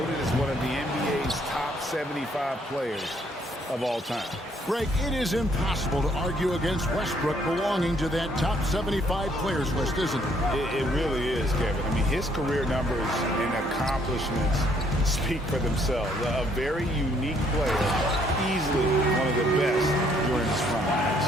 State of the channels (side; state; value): both; normal; correlation 0.67